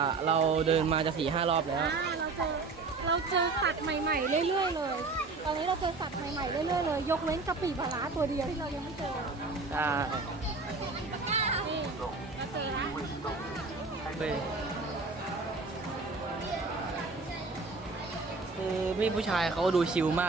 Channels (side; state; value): left; quieter; 3.9 dB